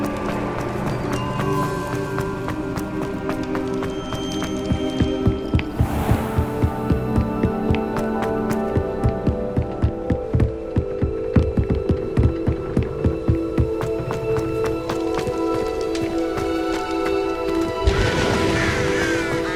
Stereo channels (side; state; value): both; identical; correlation 1.00